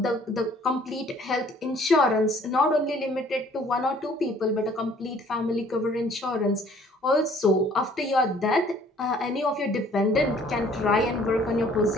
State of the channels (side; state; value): both; normal; correlation 0.57